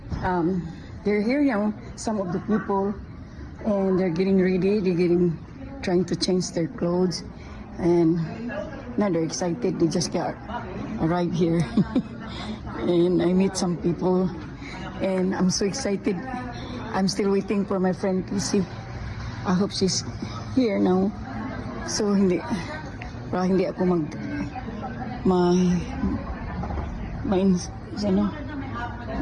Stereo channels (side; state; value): both; identical; correlation 1.00